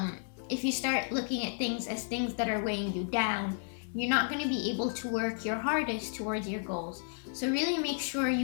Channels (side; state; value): right; silent; 56 dB below the other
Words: If you start looking at things as things that are weighing you down, you're not going to be able to work your hardest towards your goals. So really make sure